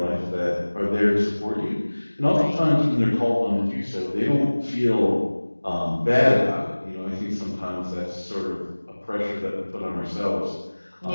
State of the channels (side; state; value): both; inverted; correlation -1.00